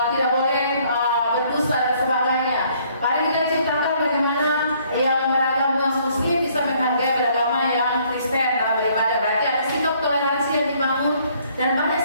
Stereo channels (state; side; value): inverted; both; correlation -0.63